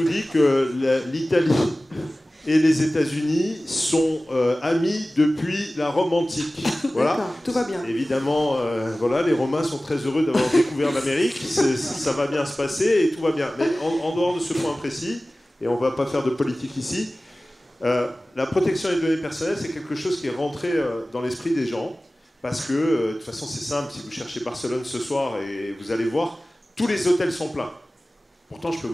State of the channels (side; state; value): both; normal; correlation 0.97